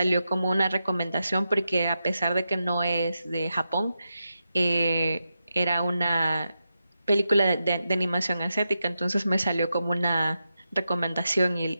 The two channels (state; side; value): inverted; both; correlation -0.88